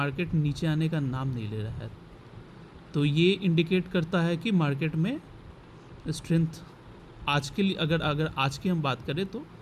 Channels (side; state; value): both; identical; correlation 1.00